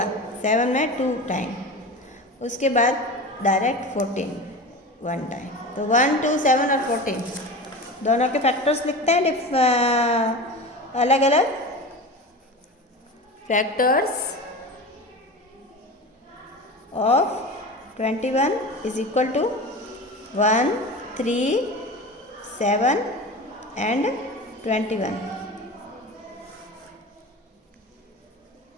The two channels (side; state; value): both; normal; correlation 0.30